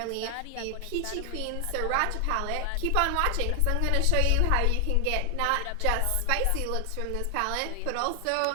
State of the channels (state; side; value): different; both; correlation 0.00